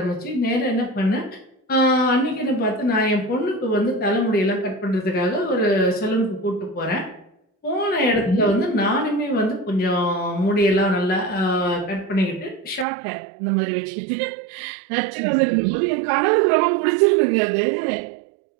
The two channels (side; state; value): left; drops out; at 12.9 s